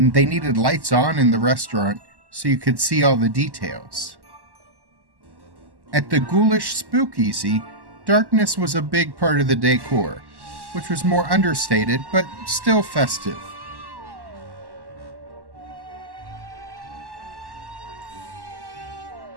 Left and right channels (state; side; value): late; left; 1.1 ms